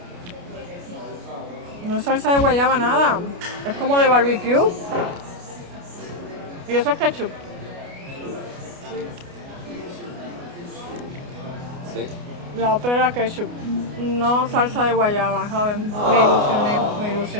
No es salsa de guayaba nada, es como de barbecue. Y eso es ketchup. Sí. La otra era ketchup, no salsa de guayaba, ¿saben? Me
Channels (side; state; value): left; late; 29 ms